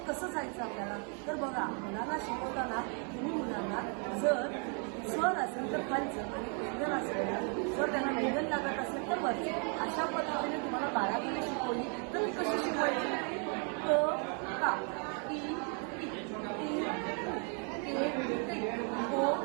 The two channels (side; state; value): left; quieter; 39.7 dB